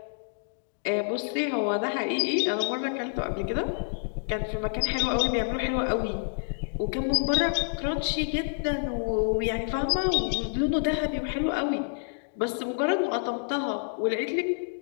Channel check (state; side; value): silent; right; digital silence